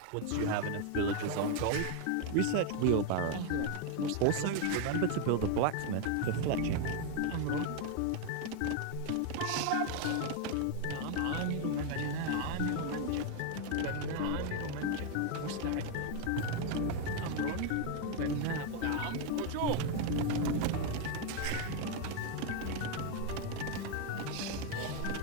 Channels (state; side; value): different; both; correlation 0.01